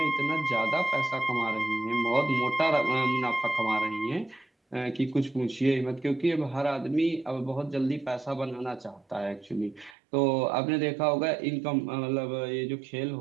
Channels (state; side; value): drops out; left; at 10.0 s